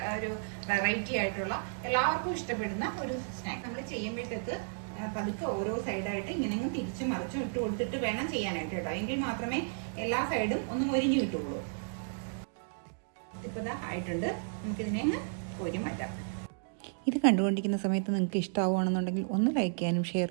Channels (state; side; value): silent; left; digital silence